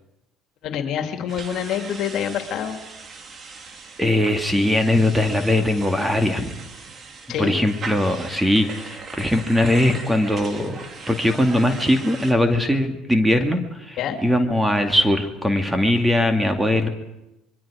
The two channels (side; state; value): both; normal; correlation 0.85